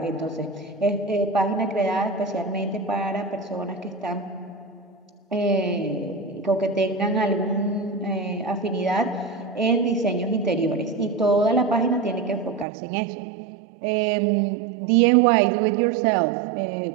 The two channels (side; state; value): left; drops out; at 12.7 s